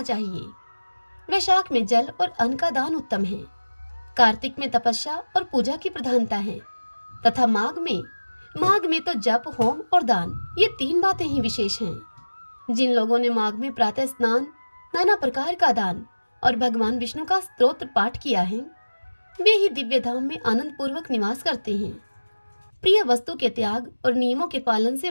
चाहिए। वैशाख में जल और अन्न का दान उत्तम है। कार्तिक में तपस्या और पूजा की प्रधानता है तथा माघ में तो जप, होम और दान, ये 3 बातें ही विशेष हैं। जिन लोगों ने माघ में प्रातः स्नान, नाना प्रकार का दान और भगवान विष्णु का स्तोत्र पाठ किया है, वे ही दिव्य धाम में आनंद पूर्वक निवास करते हैं। प्रिय वस्तु के त्याग और नियमों के पालन से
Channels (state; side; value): inverted; both; correlation -1.00